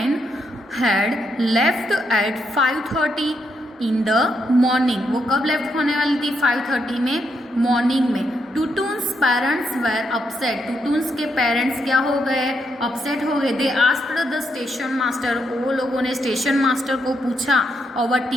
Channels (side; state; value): both; normal; correlation 0.79